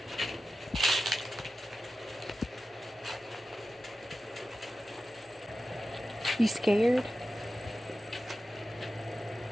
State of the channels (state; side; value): normal; both; correlation 0.93